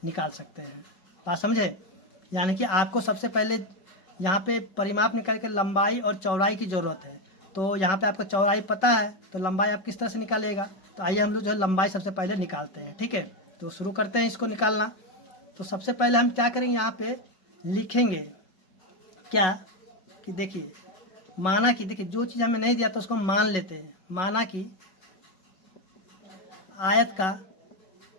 निकाल सकते हैं। बात समझे, यानी कि आपको सबसे पहले यहाँ पे परिमाप निकाल के लंबाई और चौड़ाई की ज़रूरत है, तो यहाँ पे आपका चौड़ाई पता है तो लंबाई आप किस तरह से निकालिएगा। तो आइए हम लोग जो है लंबाई सबसे पहले निकालते हैं, ठीक है। तो शुरू करते हैं इसको निकालना। तो सबसे पहले हम क्या करेंगे, यहाँ पे लिखेंगे क्या कि देखिए, माना कि देखिए जो चीज़ हमें नहीं दिया तो उसको मान लेते हैं। माना कि आयत का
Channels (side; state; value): right; late; 5.3 ms